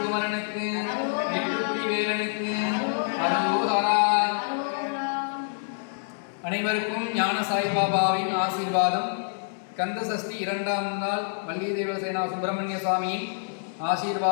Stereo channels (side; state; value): right; silent; 56 dB below the other